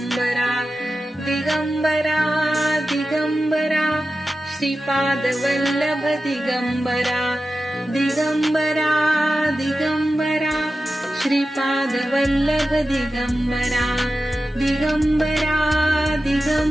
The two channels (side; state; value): both; normal; correlation 0.93